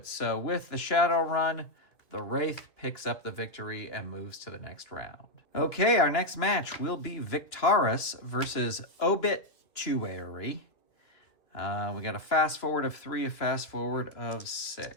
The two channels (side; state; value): right; late; 2.9 ms